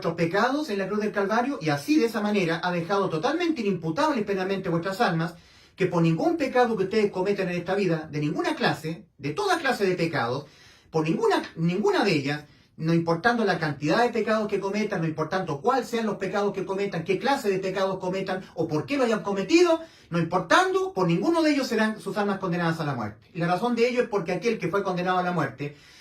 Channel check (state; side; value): identical; both; correlation 1.00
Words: pecados en la cruz del Calvario, y así de esa manera ha dejado totalmente inimputables penalmente vuestras almas, que por ningún pecado que ustedes cometan en esta vida, de ninguna clase, de toda clase de pecados, por ninguna de ellas, no importando la cantidad de pecados que cometan, no importando cuáles sean los pecados que cometan, qué clase de pecados cometan o por qué lo hayan cometido, no importando, por ninguno de ellos serán sus almas condenadas a la muerte. Y la razón de ello es porque aquel que fue condenado a la muerte,